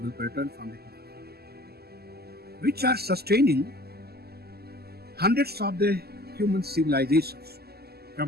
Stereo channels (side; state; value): left; late; 0.46 ms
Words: pattern from the Himalayas, which are sustaining hundreds of the human civilizations,